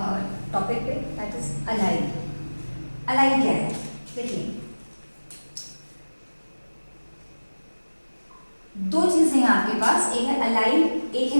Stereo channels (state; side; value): inverted; both; correlation -1.00